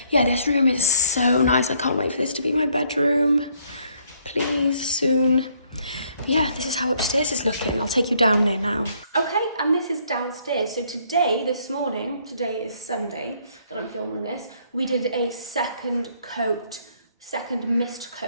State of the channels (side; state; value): both; inverted; correlation -0.66